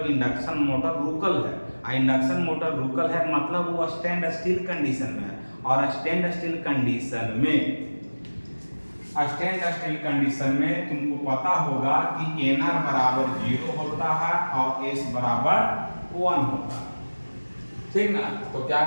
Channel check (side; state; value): both; inverted; correlation -1.00